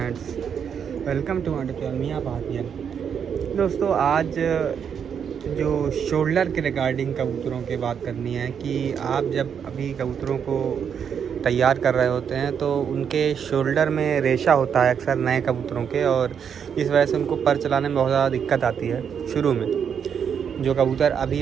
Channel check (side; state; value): left; quieter; 7.6 dB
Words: welcome to my channel Miyan Bhatia. दोस्तों, आज जो शोल्डर के रिगार्डिंग कबूतरों की बात करनी है कि आप जब अभी कबूतरों को तैयार कर रहे होते हैं तो उनके शोल्डर में रेशा होता है अक्सर नए कबूतरों के, और इस वजह से उनको पर चलाने में बहुत ज़्यादा दिक्कत आती है शुरू में। जो कबूतर अभी